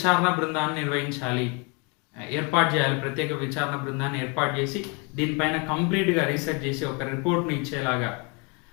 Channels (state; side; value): quieter; right; 32.5 dB